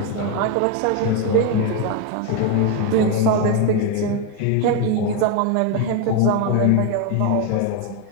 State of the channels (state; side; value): different; both; correlation 0.02